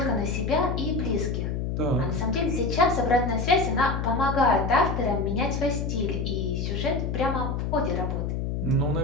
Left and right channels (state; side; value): noise; left; hum, 2 dB below the sound